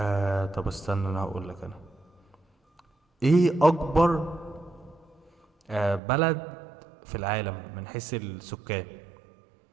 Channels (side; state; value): left; drops out; at 6.0 s